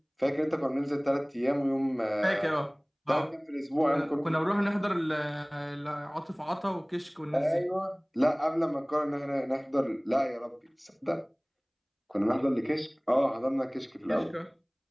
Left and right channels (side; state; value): both; identical; correlation 1.00